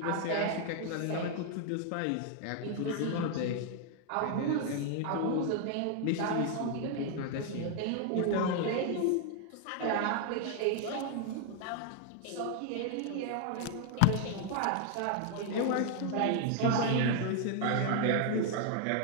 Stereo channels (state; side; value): different; both; correlation 0.00